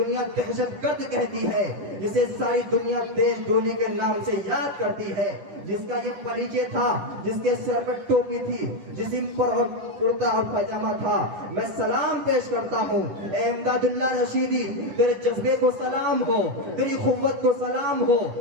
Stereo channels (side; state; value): left; late; 10 ms